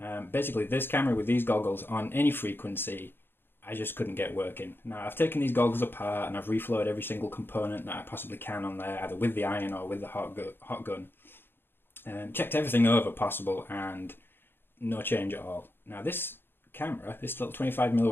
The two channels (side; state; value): right; late; 0.10 ms